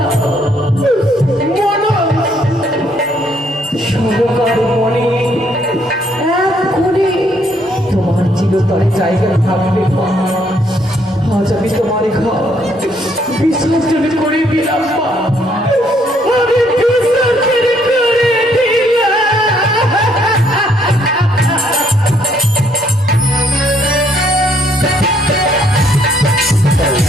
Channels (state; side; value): normal; both; correlation 0.69